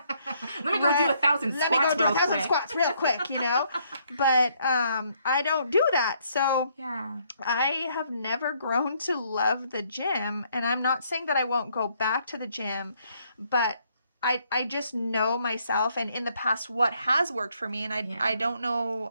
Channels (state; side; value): inverted; both; correlation -0.69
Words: me go do 1,000 squats. Let me go do 1,000 squats real quick, you know? But I don't do that. So yeah, I have never grown to love the gym. And I'm not saying that I won't go back to the gym, but I just know myself and in the past what has worked for me. And I don't